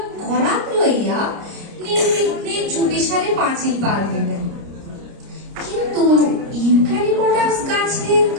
করাত লইয়া নির্বিঘ্নে চুপিসারে পাঁচিল পার হইলেন। কিন্তু ইউক্যালিপটাস গাছের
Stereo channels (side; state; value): left; late; 30 ms